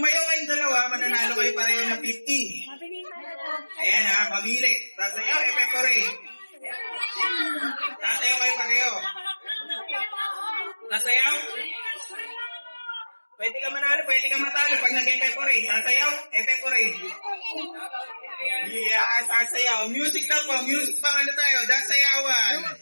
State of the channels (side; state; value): both; inverted; correlation -1.00